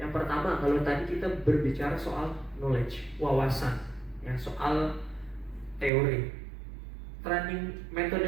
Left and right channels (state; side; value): drops out; left; at 5.9 s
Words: pertama, kalau tadi kita berbicara soal knowledge, wawasan ya, soal teori.